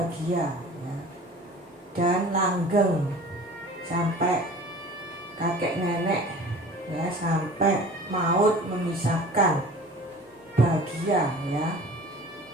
ya, dan langgeng sampai kakek nenek, ya, sampai maut memisahkan, bahagia, ya.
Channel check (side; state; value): both; normal; correlation 0.42